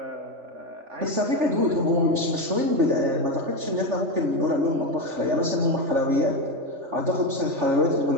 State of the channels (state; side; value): late; left; 3.4 ms